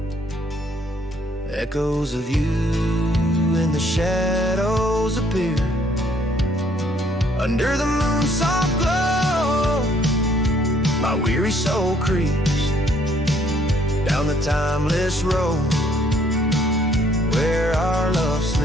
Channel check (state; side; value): normal; both; correlation 0.65